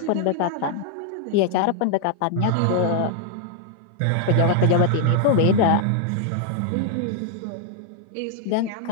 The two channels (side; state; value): both; different; correlation 0.00